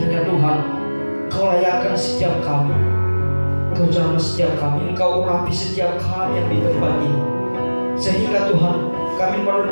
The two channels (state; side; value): inverted; both; correlation -1.00